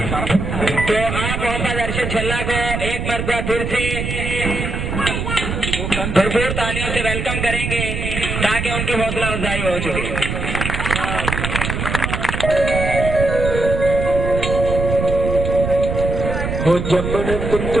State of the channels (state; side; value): noise; right; rumble, 3 dB below the sound